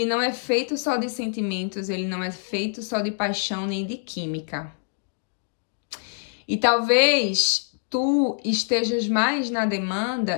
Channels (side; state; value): right; silent; digital silence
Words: não é feito só de sentimentos, ele não é feito só de paixão nem de química. E talvez tu estejas mais na